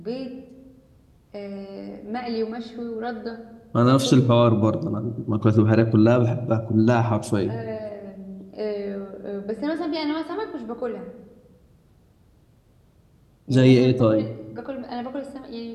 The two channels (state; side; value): identical; both; correlation 1.00